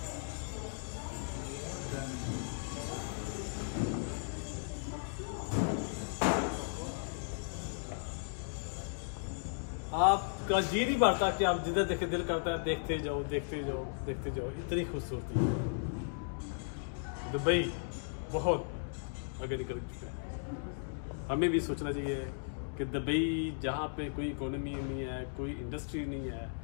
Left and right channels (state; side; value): silent; right; digital silence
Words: आपका जी नहीं बढ़ता कि आप जिधर देखे दिल करता है देखते जाओ देखते जाओ देखते जाओ। इतनी खूबसूरती है दुबई, बहुत आगे निकल चुका है। हमें भी सोचना चाहिए कि दुबई जहाँ पे कोई इकोनॉमी नहीं है, कोई इंडस्ट्री नहीं है,